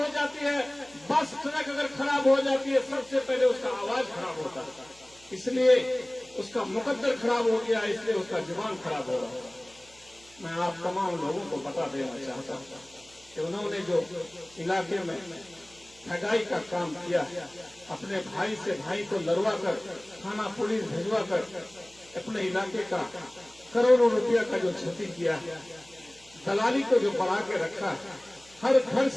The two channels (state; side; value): noise; right; hum, 27 dB below the sound